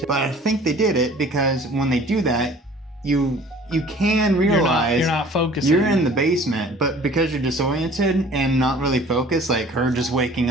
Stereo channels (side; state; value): both; normal; correlation 0.49